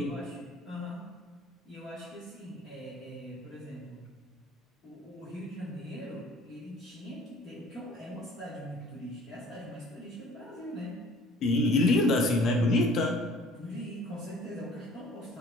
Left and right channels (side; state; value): both; normal; correlation 0.51